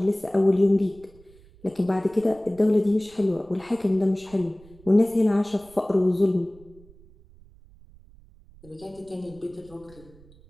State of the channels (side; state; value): right; noise; rumble, 25 dB below the sound